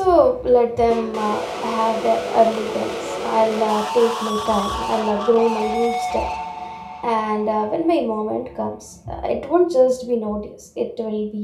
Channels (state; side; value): identical; both; correlation 1.00